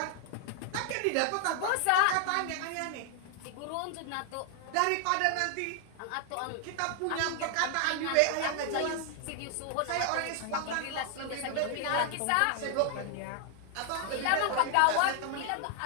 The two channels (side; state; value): both; different; correlation 0.00